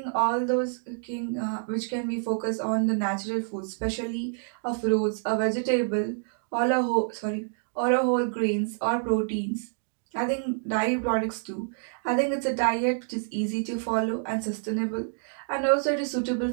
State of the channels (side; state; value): left; silent; digital silence